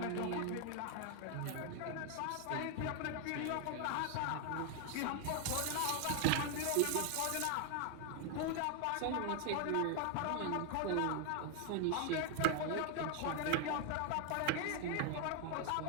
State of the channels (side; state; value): both; different; correlation 0.00